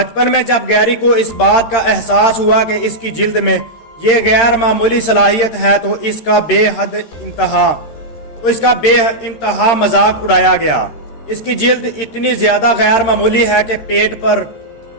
میں جب گیری کو اس بات کا احساس ہوا کہ اس کی جلد میں یہ غیر معمولی صلاحیت ہے تو اس کا بے انتہا مذاق اڑایا گیا۔ اس کی جلد اتنی زیادہ غیر معمولی ہے کہ پیٹ پر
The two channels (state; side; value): late; right; 13 ms